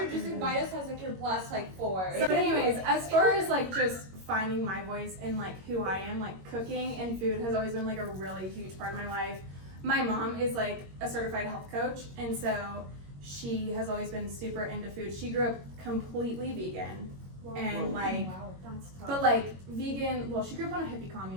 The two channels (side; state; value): left; late; 21 ms